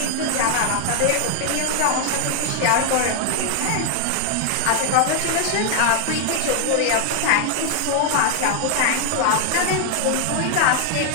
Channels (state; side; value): different; both; correlation 0.00